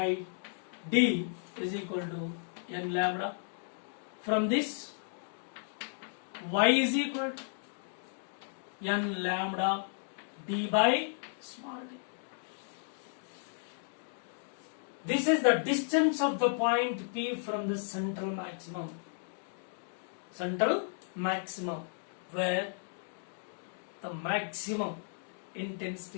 d is equal to n lambda. From this, y is equal to n lambda d by small d. This is the distance of the point P from the central maximum. Central maximum, where the maximum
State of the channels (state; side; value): silent; right; digital silence